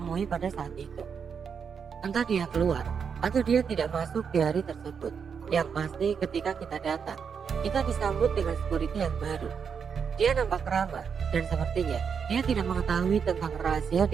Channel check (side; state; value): left; quieter; 6.6 dB